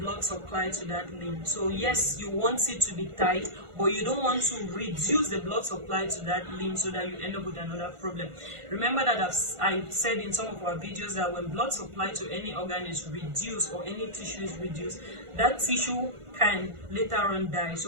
blood supply to that limb. So yes, you want it to be tight, but you don't want to reduce the blood supply to that limb so that you end up with another problem. Remember that I've said in some of our videos that when blood supply to any organ is reduced or any tissue is reduced, that tissue can later on die.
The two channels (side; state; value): left; late; 1.5 ms